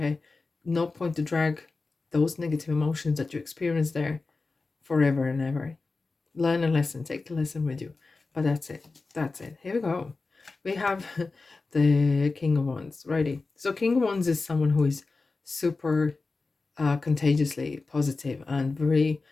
no point to drag those negative emotions that you experience there forever and ever. Learn a lesson, take the lesson with you. But that's it. Here we go. We have the King of Wands. Righty. So King of Wands is someone who is super contagiously positive and very,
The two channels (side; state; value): right; quieter; 3.8 dB